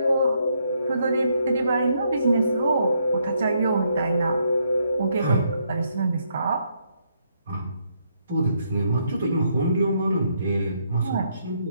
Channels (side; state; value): both; inverted; correlation -0.74